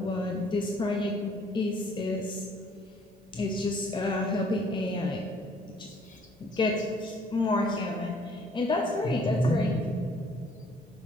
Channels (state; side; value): normal; both; correlation 0.60